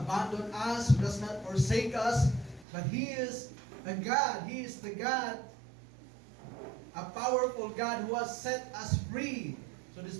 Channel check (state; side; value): drops out; left; at 2.7 s